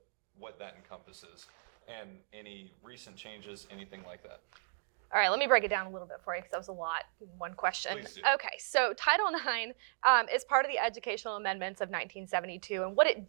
that encompasses and any recent changes, anything like that? All right, let me break it down a little bit for you because that was a lot in one question. Please do. Okay, so Title IX is part of the Educational Amendments of 1972, and what it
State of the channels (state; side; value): silent; left; digital silence